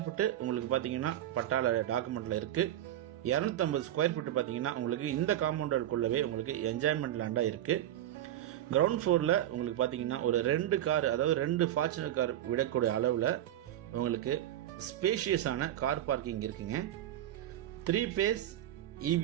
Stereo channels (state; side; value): quieter; left; 12.2 dB